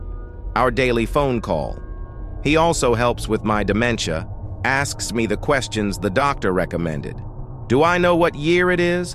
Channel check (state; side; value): identical; both; correlation 1.00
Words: Our daily phone call. He also helps with my dementia, asks me the questions the doctor recommended. Do I know what year it is?